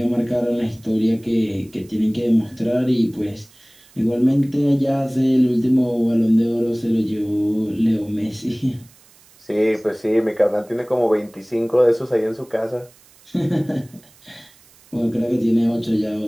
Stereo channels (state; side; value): noise; right; hiss, 28 dB below the sound